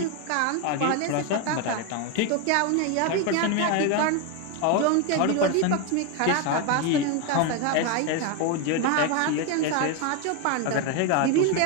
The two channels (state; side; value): different; both; correlation 0.02